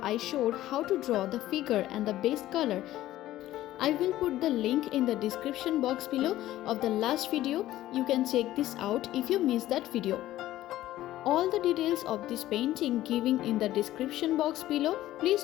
I showed how to draw the figure and the base color. I will put the link in the description box below of the last video. You can check this out if you missed that video. All the details of this painting given in the description box below. Please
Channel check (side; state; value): right; quieter; 14.6 dB